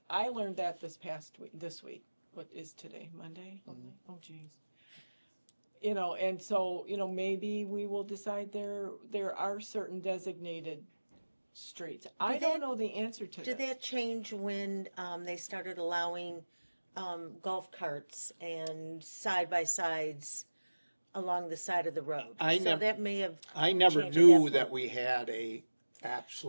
learned that this week. What is today? Monday? Oh geez. You know, and so, you know, maybe we will decide there are certain designated streets. I Did don't that- know the answer to Did this. that change when, they started allowing, golf carts and side-by-sides along the side of the road? I So nev- that may have, I never Change at knew that that point. we had a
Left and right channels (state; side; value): inverted; both; correlation -1.00